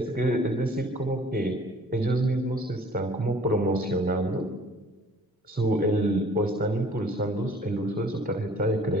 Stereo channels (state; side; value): normal; both; correlation 0.54